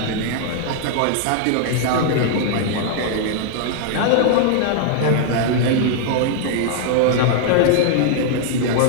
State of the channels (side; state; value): both; different; correlation -0.01